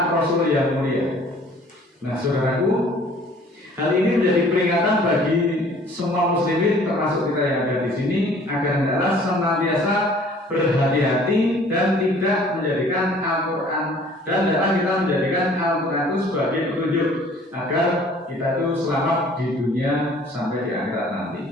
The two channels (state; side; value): normal; both; correlation 0.53